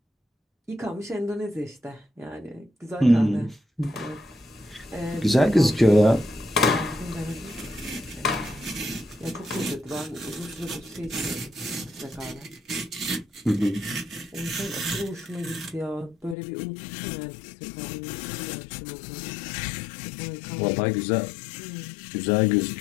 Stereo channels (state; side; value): drops out; right; at 16.4 s